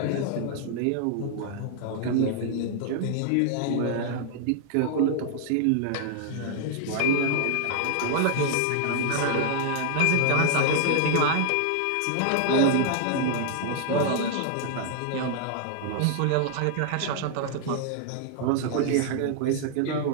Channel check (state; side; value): different; both; correlation 0.00